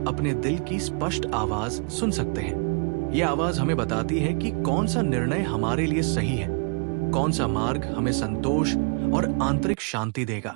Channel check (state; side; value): quieter; left; 36.8 dB